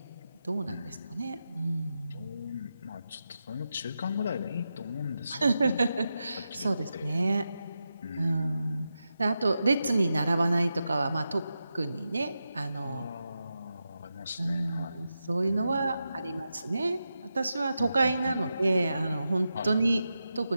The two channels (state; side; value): inverted; both; correlation -0.89